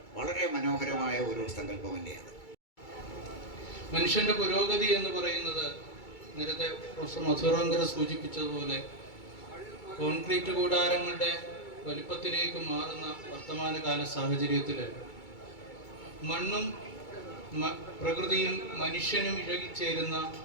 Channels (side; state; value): right; late; 2.3 ms